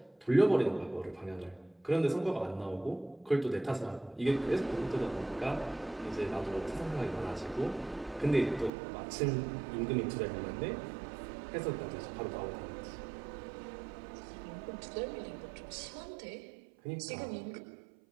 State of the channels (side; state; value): left; drops out; at 8.7 s